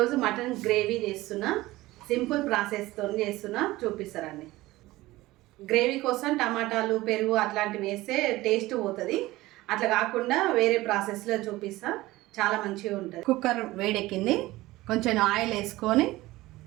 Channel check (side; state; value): left; quieter; 18.3 dB